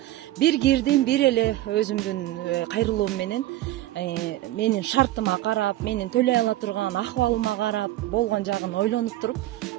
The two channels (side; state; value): left; quieter; 15.2 dB